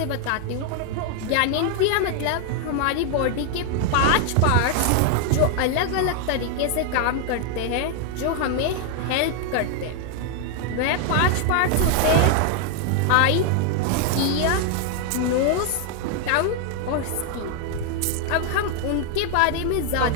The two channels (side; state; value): both; different; correlation 0.00